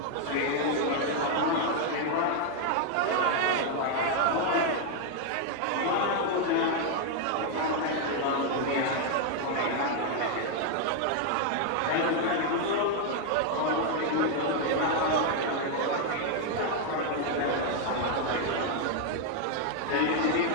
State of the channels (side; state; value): both; different; correlation 0.00